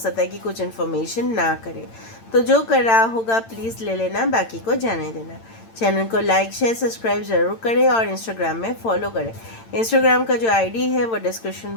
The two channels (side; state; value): right; late; 8.9 ms